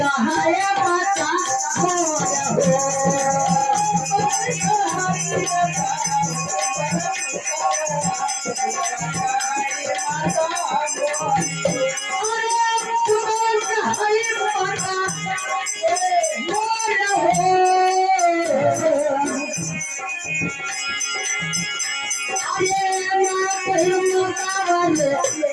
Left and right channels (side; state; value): both; identical; correlation 1.00